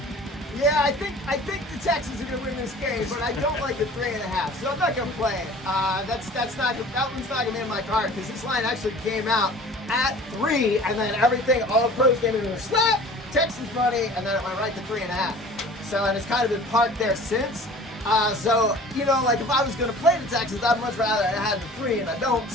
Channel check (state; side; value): normal; both; correlation 0.44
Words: Yeah, I think the Texans are going to win this game, but I don't like the 3.5, so I'm not going to play it. That one's not going to be in my card because this line actually came out at 3, and then everything, all the pros came into a slap, Texans money, and then it went right to 3.5. So, and it's kind of been parked there since. So, if I was going to play the Texans, I'd much rather have the 3, and I don't,